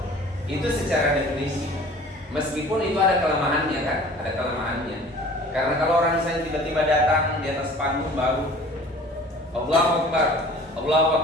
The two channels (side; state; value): both; normal; correlation 0.47